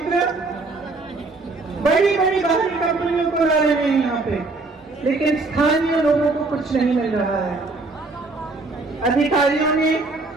बड़ी बड़ी बाहरी कंपनियों को ला रहे हैं यहाँ पे, लेकिन स्थानीय लोगों को कुछ नहीं मिल रहा है। अधिकारियों ने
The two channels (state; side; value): quieter; left; 3.5 dB